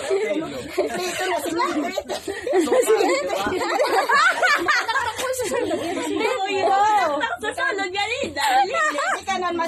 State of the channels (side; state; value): both; identical; correlation 1.00